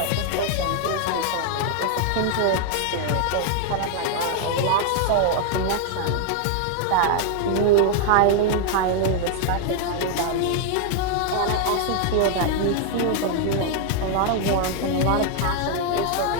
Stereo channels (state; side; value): different; both; correlation 0.00